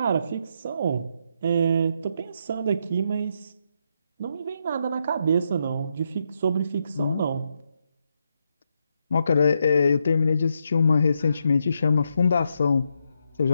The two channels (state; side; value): inverted; both; correlation -0.80